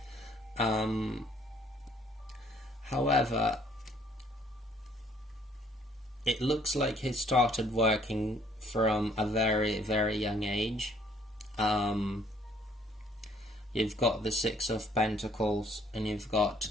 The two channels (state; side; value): normal; both; correlation 0.62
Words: However, it looks like he started working from a very, very young age. You've got the Six of Pentacles and you've got